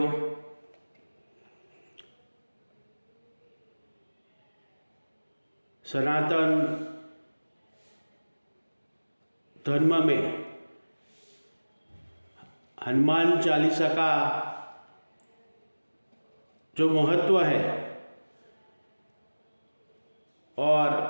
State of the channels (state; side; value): inverted; both; correlation -1.00